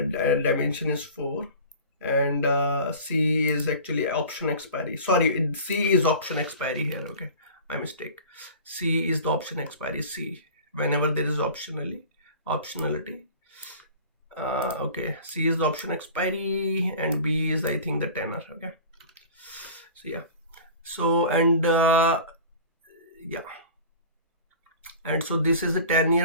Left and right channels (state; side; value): inverted; both; correlation -0.40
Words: dimension is 4, and C is actually option expiry. Sorry, C is option expiry here. Okay, my mistake. C is the option expiry. C, whenever there is optionality. Okay, C is the option expiry, and B is, I think, the tenor. Okay, so yeah, so and yeah, and so this is a